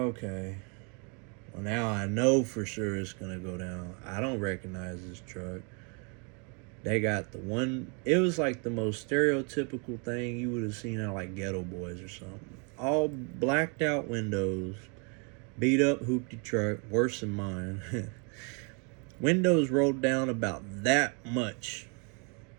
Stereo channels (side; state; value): left; quieter; 35.7 dB